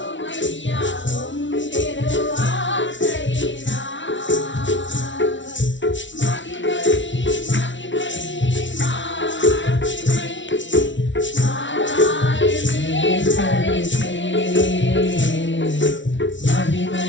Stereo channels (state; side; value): late; right; 0.55 ms